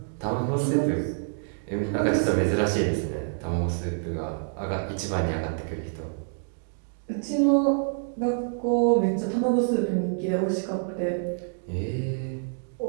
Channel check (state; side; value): silent; left; digital silence